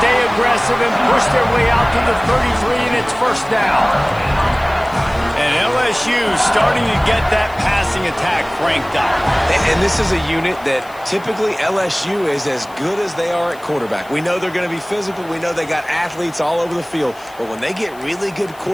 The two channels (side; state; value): left; noise; hiss, 25 dB below the sound